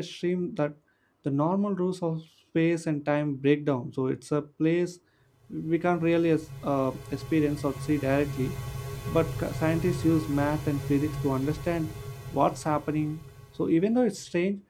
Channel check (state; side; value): identical; both; correlation 1.00